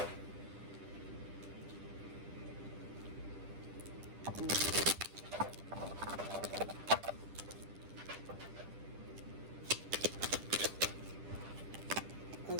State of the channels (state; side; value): late; left; 10 ms